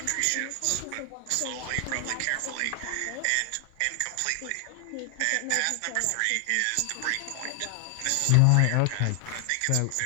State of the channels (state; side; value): different; both; correlation 0.00